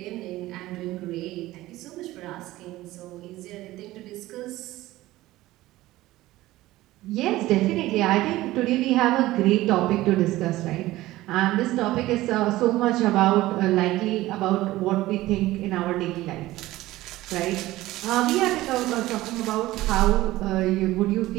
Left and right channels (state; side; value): quieter; left; 17.0 dB